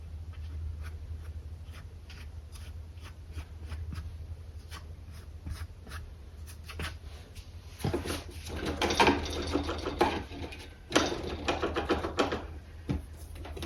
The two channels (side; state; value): both; identical; correlation 1.00